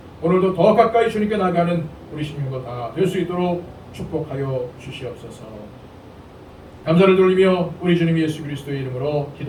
오늘도 더 가까이 주님께 나가는 우리 신령도 다 될 수 있도록 축복하여 주시옵소서. 감사를 돌리며 우리 주님 예수 그리스도의 이름으로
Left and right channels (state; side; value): identical; both; correlation 1.00